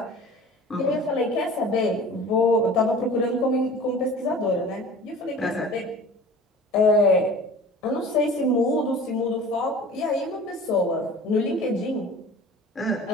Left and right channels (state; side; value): normal; both; correlation 0.41